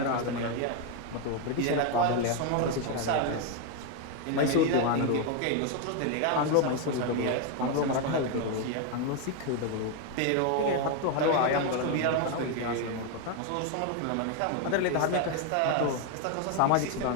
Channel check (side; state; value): both; different; correlation 0.01